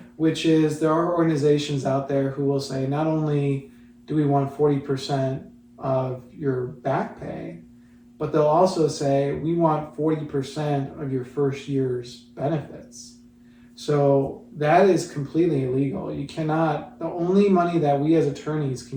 Which is, there are organizations out there who will say, not only do we want 40% of your back pay, but they'll also say, we want 40% of your first year's benefits. So that is completely illegal. You cannot, the only money that we as attorneys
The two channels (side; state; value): both; identical; correlation 1.00